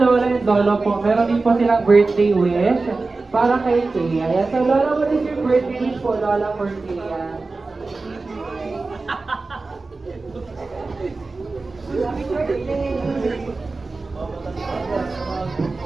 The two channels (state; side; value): quieter; left; 3.7 dB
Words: and Lolo po, meron din po silang birthday wish para kay Thea. Ayan, so Lola, what is your birthday wish po, Lola, for Thea? Happy birthday!